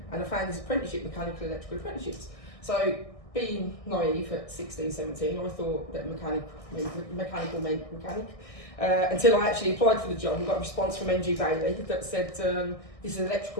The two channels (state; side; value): late; right; 1.6 ms